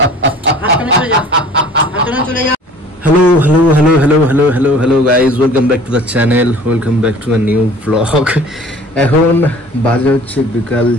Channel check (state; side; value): normal; both; correlation 0.48